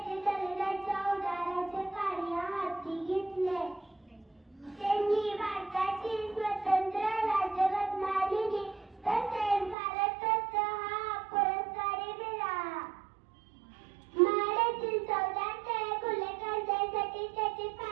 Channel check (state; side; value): drops out; left; at 9.8 s